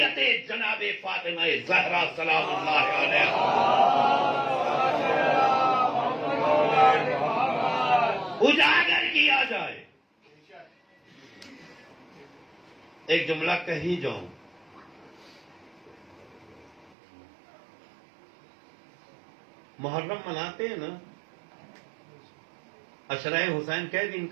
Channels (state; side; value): drops out; left; at 16.9 s